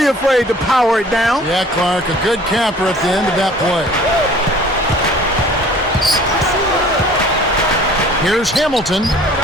afraid to power it down. Yeah, Clark, a good capper at the end of that play. Here's Hamilton,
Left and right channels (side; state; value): both; normal; correlation 0.50